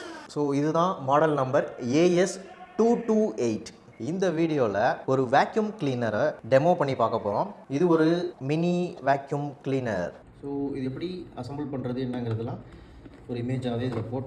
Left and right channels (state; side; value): identical; both; correlation 1.00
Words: ஸோ இதுதான் மாடல் நம்பர் AS228. இந்த வீடியோவில் ஒரு வேக்யூம் கிளீனரை டெமோ பண்ணி பார்க்க போகிறோம். இது ஒரு மினி வேக்யூம் கிளீனர். ஸோ இது எப்படி அசம்பிள் பண்ணுறது என்னங்கிறதுலாம் ஒரு இமேஜாகவே இதில்